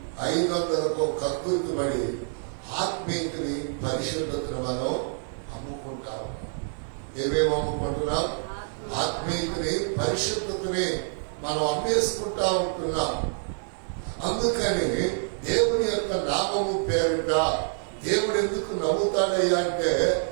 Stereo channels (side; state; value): left; silent; 60 dB below the other